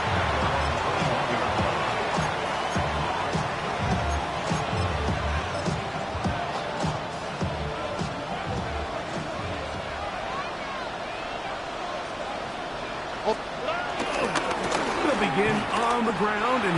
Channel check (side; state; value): both; identical; correlation 1.00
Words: They'll begin on the ground,